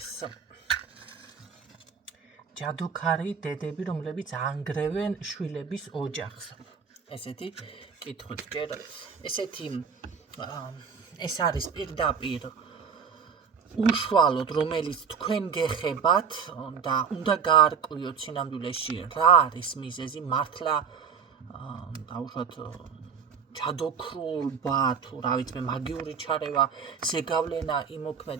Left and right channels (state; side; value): quieter; left; 6.4 dB